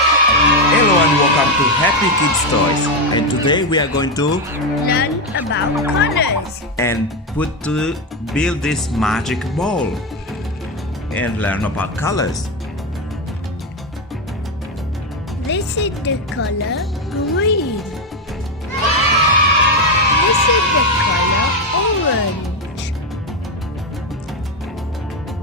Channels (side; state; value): both; normal; correlation 0.09